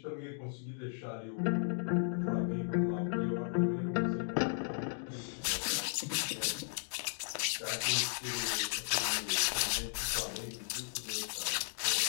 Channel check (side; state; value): right; silent; digital silence